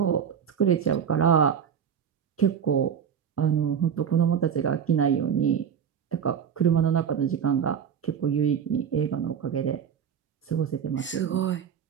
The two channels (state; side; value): quieter; left; 7.9 dB